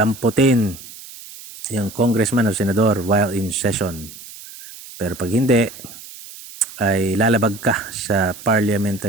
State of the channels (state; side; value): noise; right; hiss, 16 dB below the sound